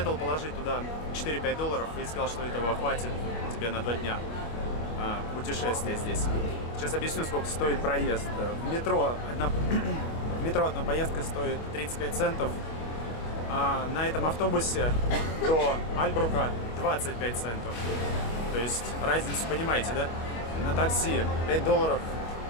положить туда $4-5 и сказал, что этого хватит тебе на 2 дня путешествия здесь. Сейчас объясню, сколько стоит проезд. В метро одна поездка стоит 35 центов. А на этом автобусе до Альбрука 25 центов. То есть разницу понимаете, да? На такси $5.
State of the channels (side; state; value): right; late; 26 ms